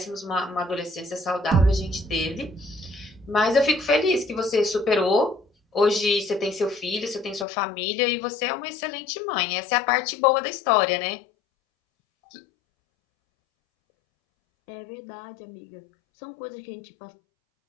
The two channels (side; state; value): right; drops out; at 7.5 s